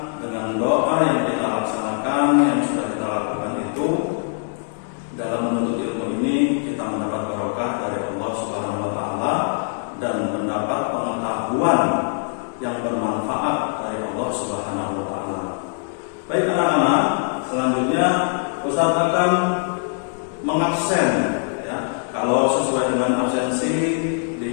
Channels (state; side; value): silent; right; 64 dB below the other